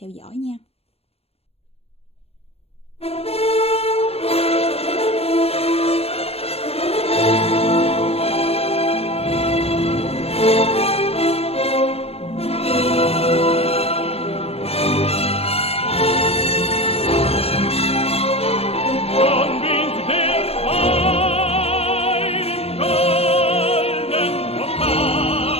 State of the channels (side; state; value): right; late; 0.29 ms